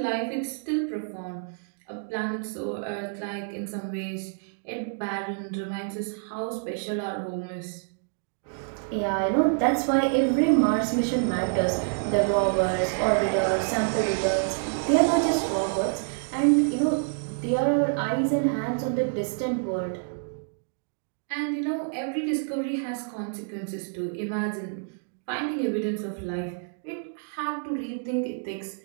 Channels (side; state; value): left; silent; digital silence